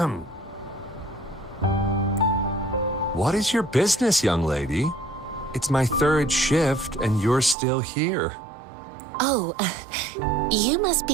What is your business, young lady? It's my third shift and you're still here. Oh, you must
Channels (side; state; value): left; drops out; at 7.6 s